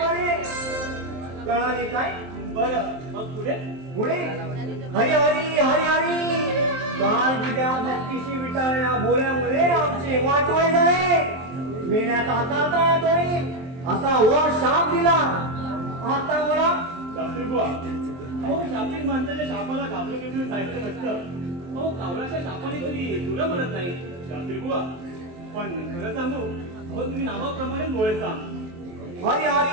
बरे. कळाले काय? बरं मग पुढे पुढे हरी हरी हरी हरी. काल विद्या भक्तीशी विटाळल्या बोल्यामुळे आमचे वाटोळे झाले. मेल्यात आता येतोय असा वर शाप दिला. आता मला शास्त्री बुवा, अहो शापित माणसाच्या शापाला घाबरून घेऊन जायचं नसतं. अहो कावळाच्या शापाने कधी तुला म्हणत नाही शास्त्री बुवा. पण खरं सांगू, अहो तुम्ही नावाप्रमाणे बोलायचा हरी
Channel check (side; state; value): left; late; 23 ms